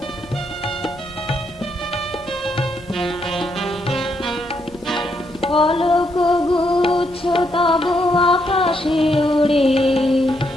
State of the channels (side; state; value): both; normal; correlation 0.77